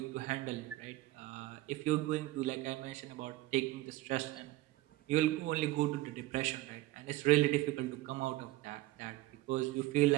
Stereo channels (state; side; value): quieter; left; 17.4 dB